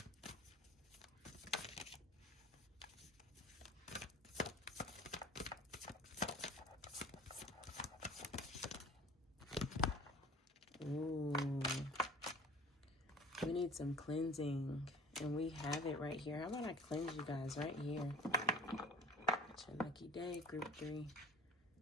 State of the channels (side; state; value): both; normal; correlation 0.44